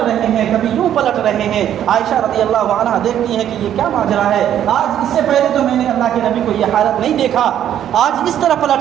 رہے ہیں، کبھی یوں پلٹ رہے ہیں، عائشہ رضی اللہ عنہا دیکھتی ہیں کہ یہ کیا ماجرا ہے، آج اس سے پہلے تو میں نے اللہ کے نبی کو یہ حالت نہیں دیکھا، آج اس طرح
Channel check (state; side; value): quieter; left; 10.6 dB